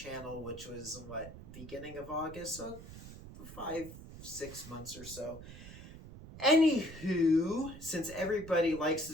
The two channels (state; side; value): noise; right; rumble, 14 dB below the sound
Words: which was beginning of August, so 5-6 months or so. Anywho, since everybody likes to